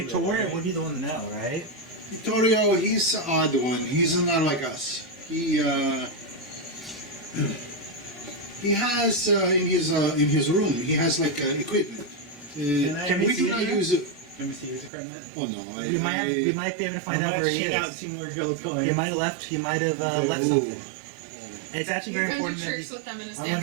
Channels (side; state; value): left; drops out; at 14.9 s